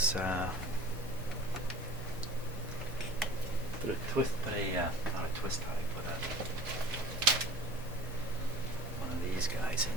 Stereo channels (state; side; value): normal; both; correlation 0.42